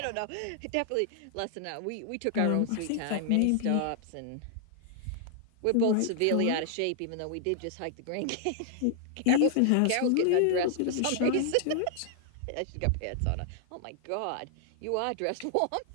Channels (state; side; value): different; both; correlation 0.00